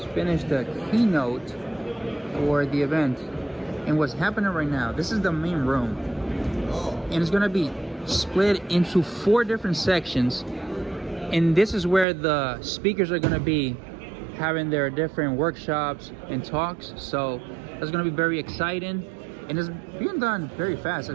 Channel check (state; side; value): drops out; left; at 12.1 s